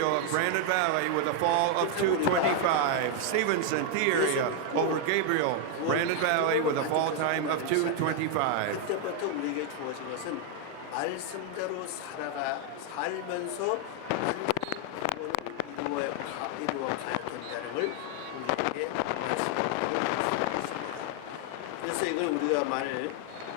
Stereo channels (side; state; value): both; different; correlation 0.00